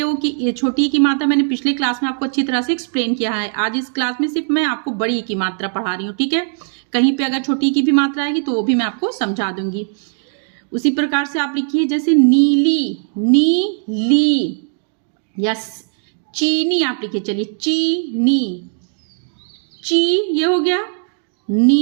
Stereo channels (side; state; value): left; silent; digital silence